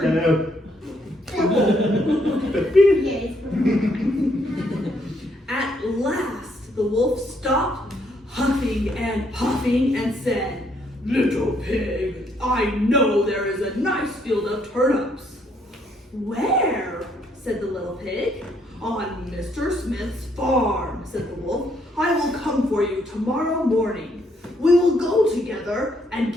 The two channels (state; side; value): normal; both; correlation 0.71